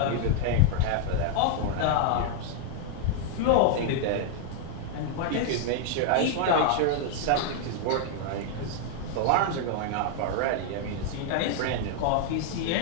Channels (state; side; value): different; both; correlation 0.00